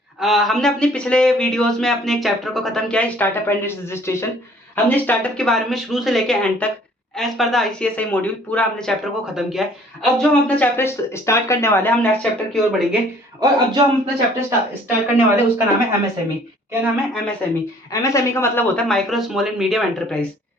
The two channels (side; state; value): both; normal; correlation 0.56